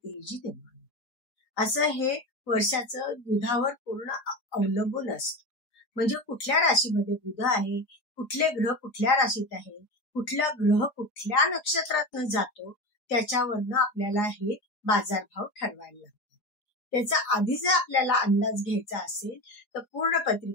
निर्माण होते. असं हे वर्षाचं बुधावर पूर्ण अवलंबून असतं. म्हणजे कुठल्या राशीमध्ये बुध आहे, कुठले ग्रह कुठल्या राशीत आहे, कुठला ग्रह कुठल्या नक्षत्रातनं जातो, त्याच्यावरनं आपल्याला हे बाजारभाव ठरवायला लागतात. त्याचा आधी जर आपल्याला अंदाज घ्यायचा असेल तर पूर्ण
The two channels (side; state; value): right; late; 4.8 ms